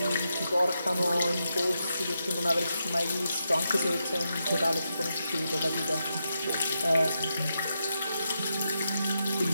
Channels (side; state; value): both; inverted; correlation -0.85